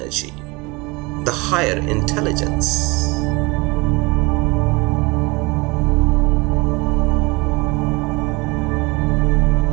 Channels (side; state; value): left; quieter; 25.7 dB